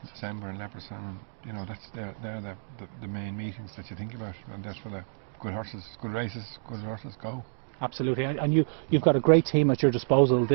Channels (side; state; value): left; silent; digital silence